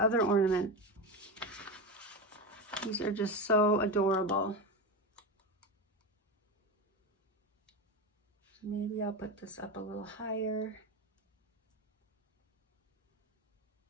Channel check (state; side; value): normal; both; correlation 0.19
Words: other ornament. These are just so adorable. Maybe I'll put this up a little higher.